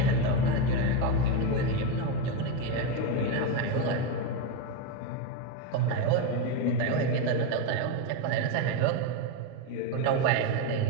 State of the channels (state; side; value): different; both; correlation 0.04